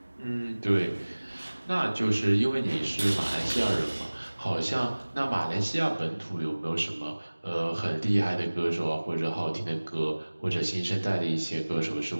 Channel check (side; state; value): both; inverted; correlation -1.00